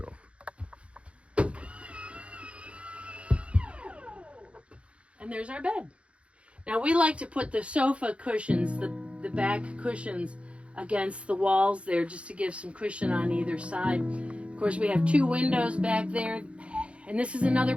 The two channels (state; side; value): late; left; 0.061 ms